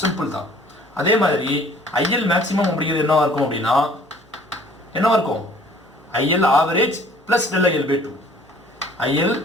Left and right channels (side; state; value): both; normal; correlation 0.54